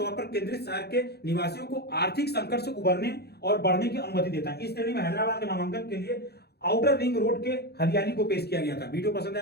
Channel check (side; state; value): right; late; 0.47 ms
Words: पर केंद्रित शहर के निवासियों को आर्थिक संकट से उबरने और बढ़ने की अनुमति देता है। इस श्रेणी में हैदराबाद के नामांकन के लिए आउटर रिंग रोड के हरियाली को पेश किया गया था। वीडियो पसंद